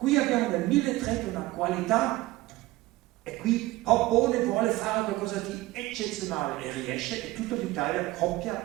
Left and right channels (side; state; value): left; quieter; 18.4 dB